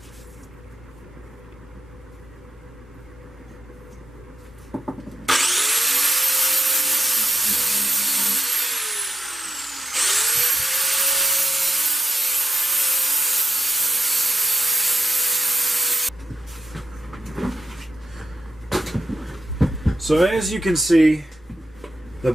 So as you can see, the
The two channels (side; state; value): both; normal; correlation 0.80